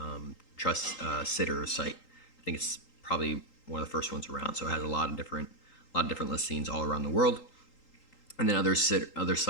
trust sitter site. I think it's probably one of the first ones around. So it has a lot of different listings all around the world. And then other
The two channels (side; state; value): right; late; 3.8 ms